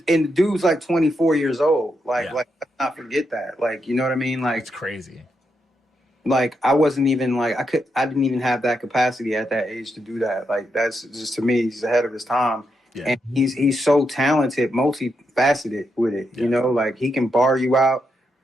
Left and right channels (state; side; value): normal; both; correlation 0.82